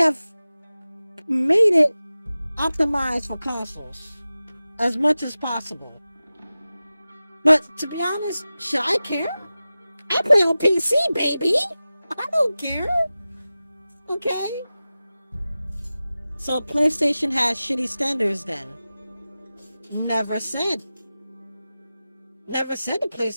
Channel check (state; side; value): inverted; both; correlation -0.96